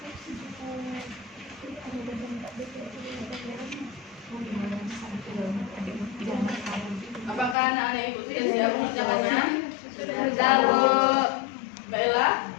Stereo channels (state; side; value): drops out; right; at 7.6 s